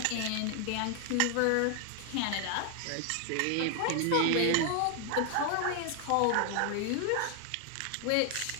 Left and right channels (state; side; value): different; both; correlation 0.00